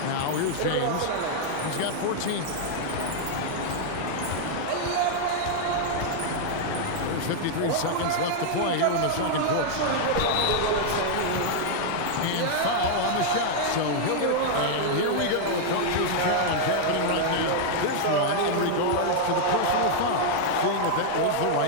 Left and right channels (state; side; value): different; both; correlation -0.01